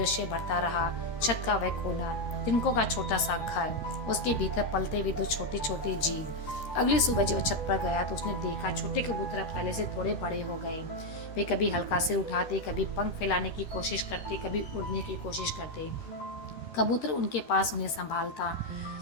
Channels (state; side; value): late; right; 13 ms